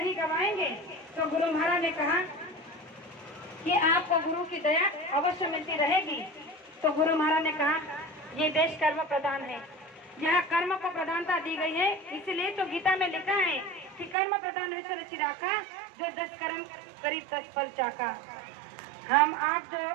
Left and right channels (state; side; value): drops out; left; at 14.2 s